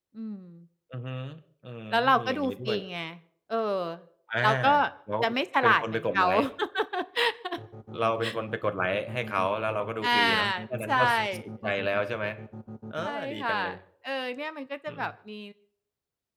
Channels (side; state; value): both; identical; correlation 1.00